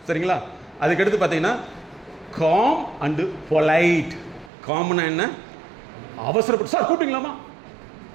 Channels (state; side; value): drops out; left; at 4.5 s